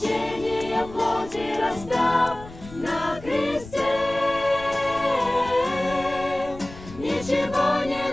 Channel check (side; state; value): left; noise; rumble, 16 dB below the sound